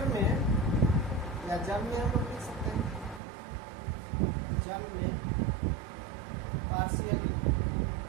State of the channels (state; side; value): drops out; left; at 3.2 s